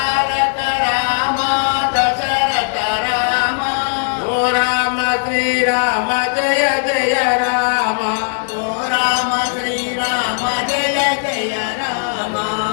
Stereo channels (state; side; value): silent; right; 68 dB below the other